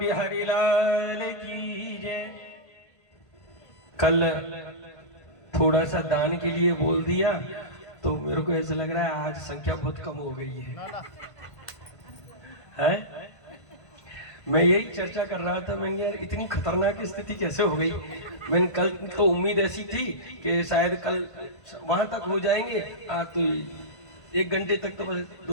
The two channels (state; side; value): late; right; 1.5 ms